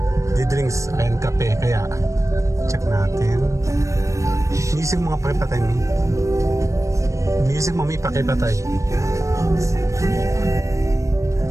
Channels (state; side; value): late; left; 0.15 ms